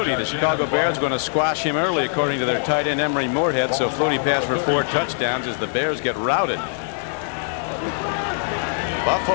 The Chicago Bears going to squash him early, according to their tight end Emery Moorhead. So Flutie passed for 4 touchdowns as the Bears get routed.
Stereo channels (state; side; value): silent; right; digital silence